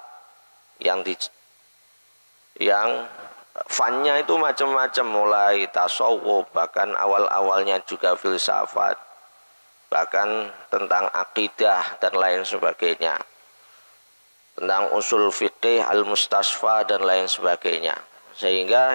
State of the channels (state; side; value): inverted; both; correlation -1.00